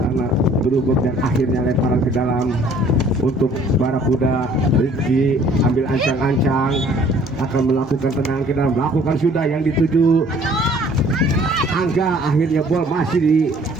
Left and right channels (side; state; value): both; normal; correlation 0.56